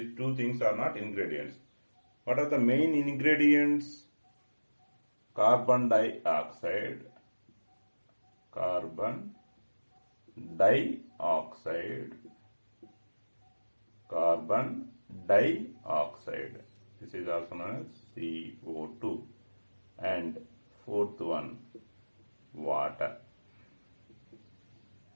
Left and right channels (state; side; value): inverted; both; correlation -1.00